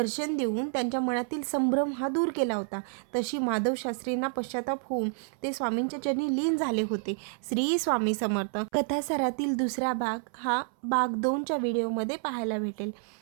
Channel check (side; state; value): left; silent; 58 dB below the other